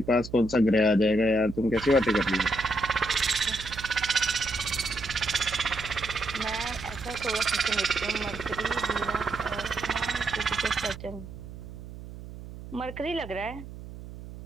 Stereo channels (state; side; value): noise; right; hum, 13 dB below the sound